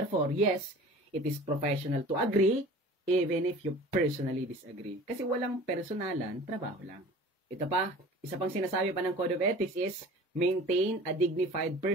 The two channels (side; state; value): both; normal; correlation 0.42